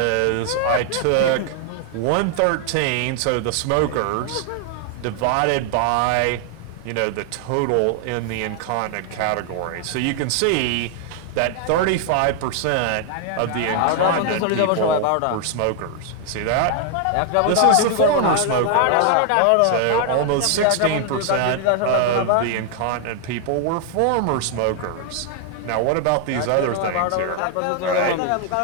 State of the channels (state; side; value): different; both; correlation 0.00